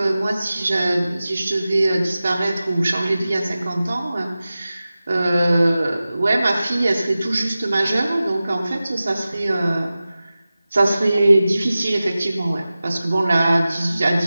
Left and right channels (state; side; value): inverted; both; correlation -0.96